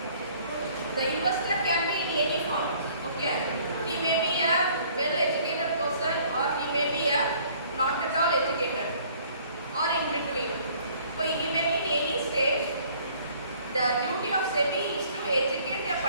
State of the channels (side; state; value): both; inverted; correlation -0.57